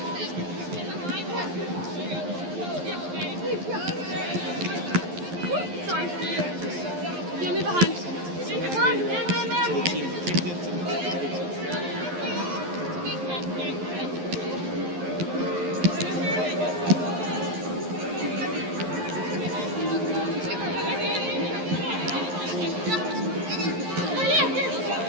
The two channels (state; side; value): late; left; 11 ms